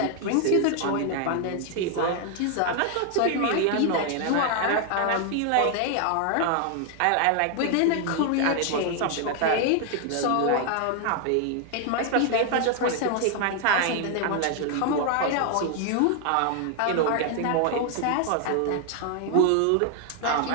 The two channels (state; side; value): different; both; correlation 0.00